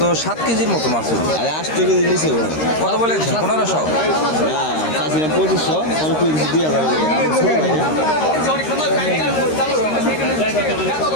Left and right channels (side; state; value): right; late; 13 ms